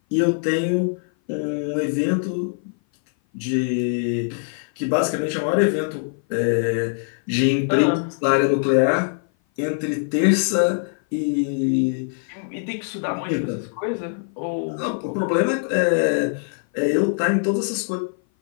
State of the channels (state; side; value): silent; right; 57 dB below the other